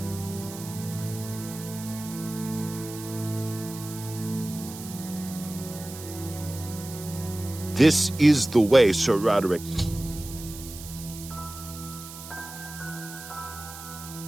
This is the way, Sir Roderick.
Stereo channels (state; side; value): noise; right; hiss, 13 dB below the sound